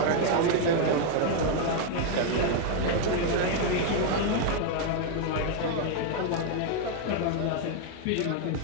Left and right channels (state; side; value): different; both; correlation 0.01